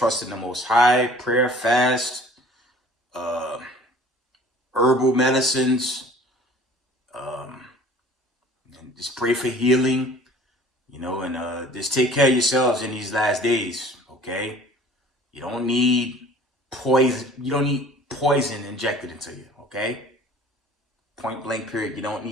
in the Most High, prayer, fast, herbal medicines, and just pray for healing, you know, and just take care of yourselves in these last days, okay? You don't need poison. You don't need poison injected into you, okay? Point blank period. You don't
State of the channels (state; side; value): normal; both; correlation 0.49